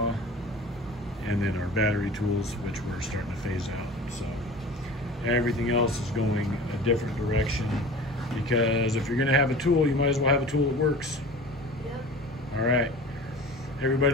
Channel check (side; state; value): both; normal; correlation 0.38